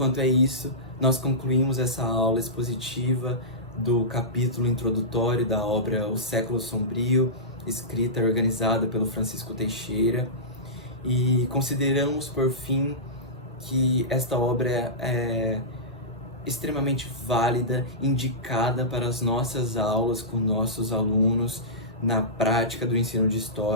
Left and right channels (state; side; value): normal; both; correlation -0.17